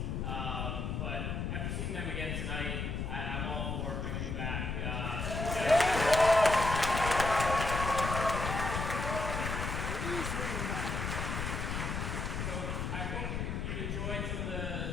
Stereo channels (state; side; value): noise; left; rumble, 2 dB below the sound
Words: But after seeing them again tonight, I'm all for bringing them back. So I hope you enjoyed some of